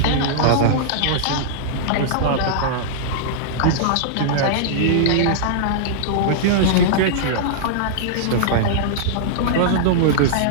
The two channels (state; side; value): different; both; correlation -0.02